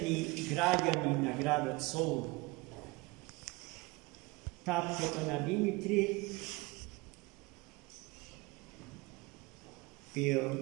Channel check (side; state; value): left; quieter; 24.2 dB